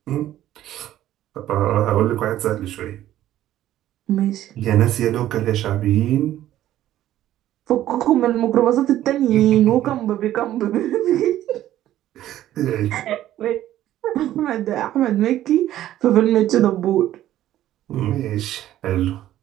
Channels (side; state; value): left; quieter; 13.1 dB